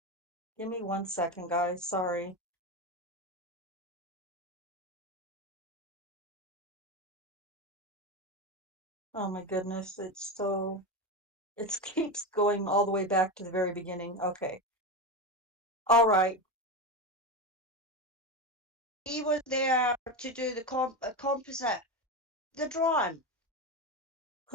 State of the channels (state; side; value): normal; both; correlation 0.17